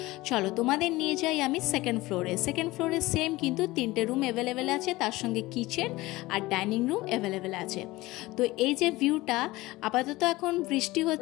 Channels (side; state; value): right; quieter; 19.5 dB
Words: চলো তোমাদের নিয়ে যাই আমি সেকেন্ড ফ্লোরে। সেকেন্ড ফ্লোরে সেম কিন্তু 3টে রুম অ্যাভেলেবেল আছে, তার সঙ্গে কিচেন আর ডাইনিং রুম অ্যাভেলেবেল আছে। তো এই যে ভিউটা, আপাতত এখন বৃষ্টি